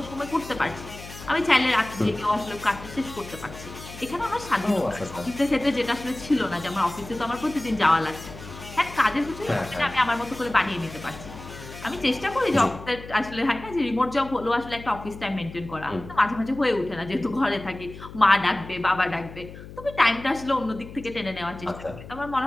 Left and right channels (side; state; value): left; noise; hum, 14 dB below the sound